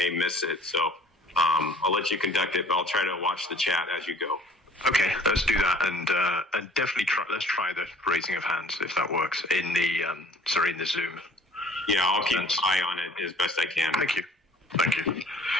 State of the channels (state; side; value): normal; both; correlation 0.52